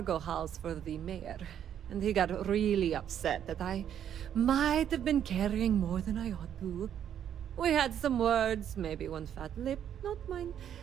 hauls for the mayor, and he got really upset that I might have been carrying more than I ought to. We had some words, maybe one fat lip, not mine,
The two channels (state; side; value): quieter; left; 9.6 dB